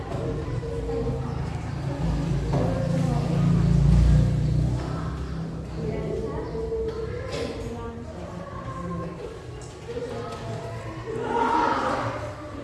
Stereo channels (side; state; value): both; identical; correlation 1.00